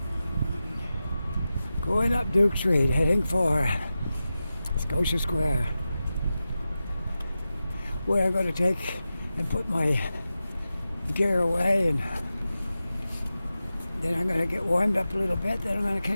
Going up Duke Street, heading for Scotia Square, where I'm going to take and put my gear away, and then I'm going to get warmed up a little bit, then I'm going to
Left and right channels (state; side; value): inverted; both; correlation -0.93